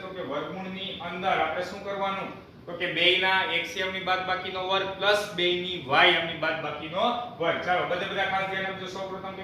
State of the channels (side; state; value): both; identical; correlation 1.00